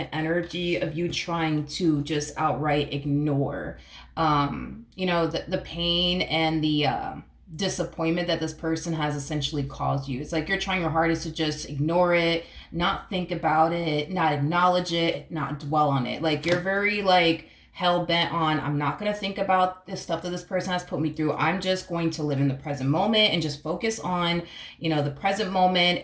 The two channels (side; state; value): both; identical; correlation 1.00